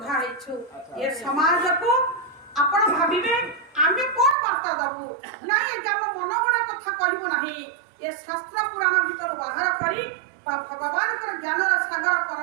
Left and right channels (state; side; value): drops out; left; at 4.4 s